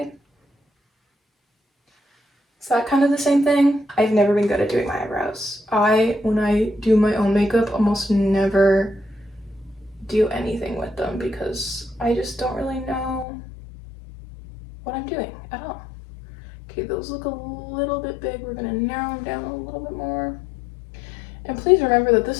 Is that kind of the same thing? I've never been good at doing my eyebrows. When I do my own makeup, almost never do anything with them because I just don't really know what I'm doing at all. Okay, those look a little bit big. We're gonna narrow them down a little bit more. And please remember that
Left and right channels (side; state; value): right; drops out; at 13.2 s